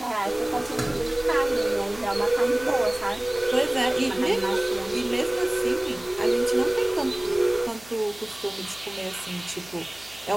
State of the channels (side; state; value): right; noise; hum, 24 dB below the sound